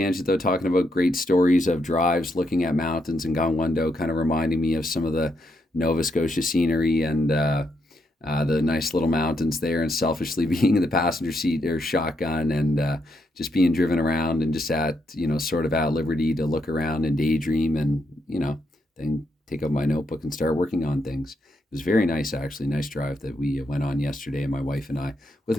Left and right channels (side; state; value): both; normal; correlation 0.79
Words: though, talking about great stories of drives, looking at mountains and Gangwon-do, kind of reminding me of some of the Nova Scotia scenery and the nice little mountains there, and selfishly being in the passenger seat or shotgun and just being driven around and just at, sort of at liberty to look around and daydream and, then take out my notebook and start working on things. It was very nice, actually. Nice drive that we went on yesterday, my wife and I, with